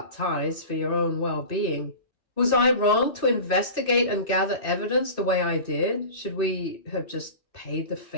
ties for your own well-being? Was I wrong to investigate and gather evidence the way I did? Should we have just paid the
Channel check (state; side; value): late; right; 2.5 ms